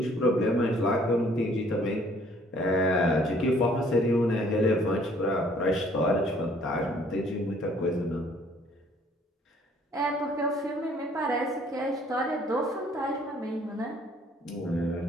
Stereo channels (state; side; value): normal; both; correlation 0.60